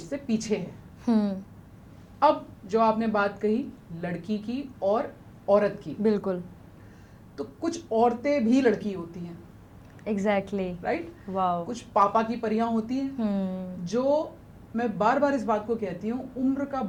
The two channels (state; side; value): identical; both; correlation 1.00